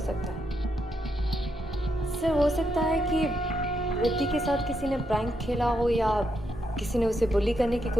सकता है। सर, हो सकता है कि रिद्धि के साथ किसी ने प्रैंक खेला हो या किसी ने उसे बुली करने की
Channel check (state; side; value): normal; both; correlation 0.80